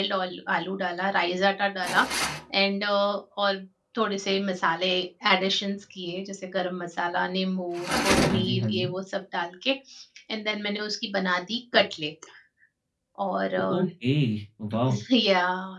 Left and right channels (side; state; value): both; identical; correlation 1.00